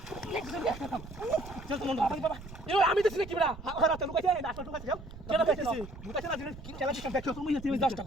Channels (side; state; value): right; noise; rumble, 14 dB below the sound